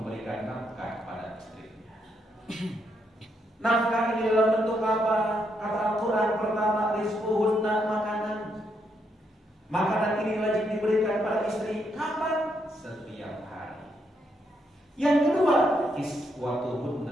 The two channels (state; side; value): normal; both; correlation 0.77